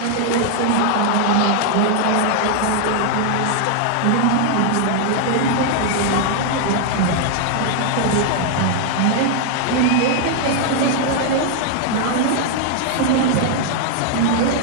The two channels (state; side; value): different; both; correlation 0.00